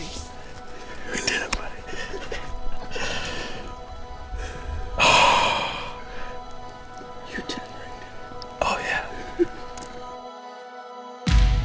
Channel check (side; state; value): both; identical; correlation 1.00